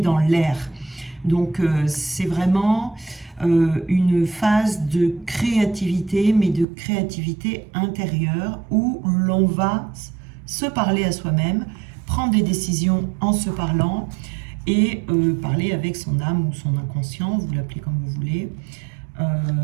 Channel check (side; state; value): left; drops out; at 6.7 s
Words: l'air. Donc c'est vraiment une phase de créativité, mais de créativité intérieure, où l'on va se parler à soi-même, prendre des décisions en se parlant, et parler avec son âme ou son inconscient, vous l'appelez comme vous voulez,